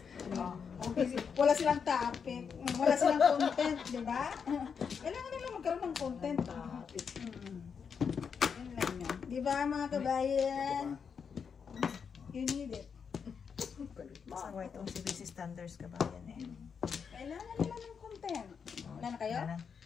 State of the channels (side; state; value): right; quieter; 6.4 dB